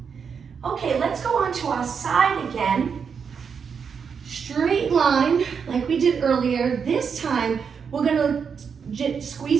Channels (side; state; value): left; quieter; 6.4 dB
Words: Okay, let's go on to our side again. Straight line, like we did earlier. This time, we're gonna